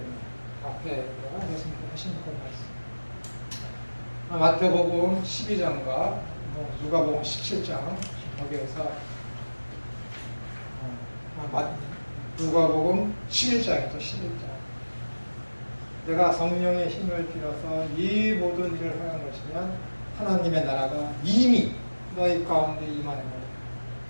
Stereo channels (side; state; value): both; inverted; correlation -1.00